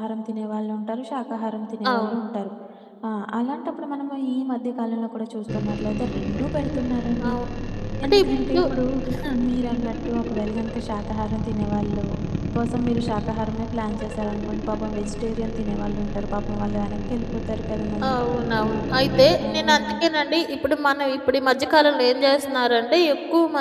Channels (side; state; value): both; identical; correlation 1.00